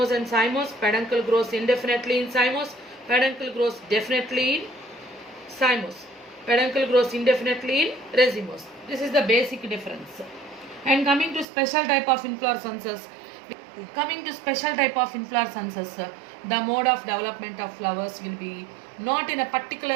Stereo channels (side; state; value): left; drops out; at 11.5 s